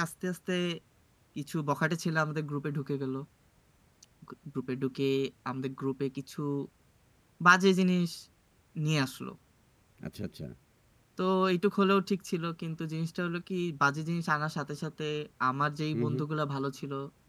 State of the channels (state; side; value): identical; both; correlation 1.00